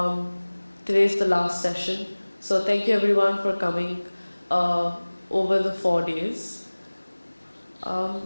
today is the last session, so thank you everyone for coming over the 4 days.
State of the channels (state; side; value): inverted; both; correlation -1.00